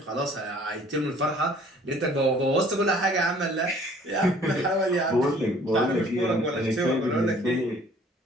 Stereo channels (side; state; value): both; normal; correlation 0.55